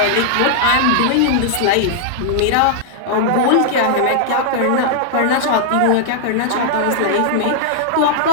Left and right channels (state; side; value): different; both; correlation -0.01